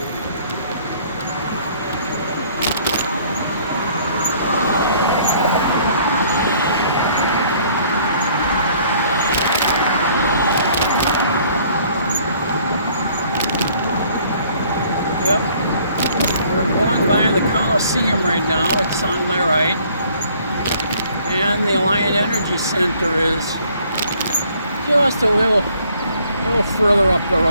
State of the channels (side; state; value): both; inverted; correlation -0.59